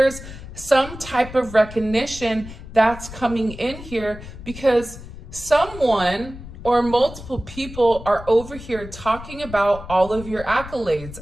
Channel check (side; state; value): left; noise; rumble, 13 dB below the sound